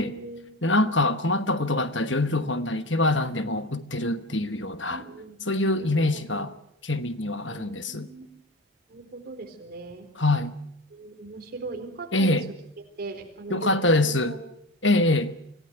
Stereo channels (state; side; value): normal; both; correlation 0.29